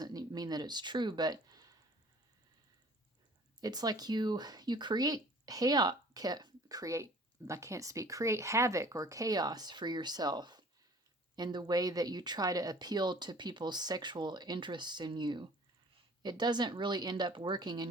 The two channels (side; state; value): both; normal; correlation 0.50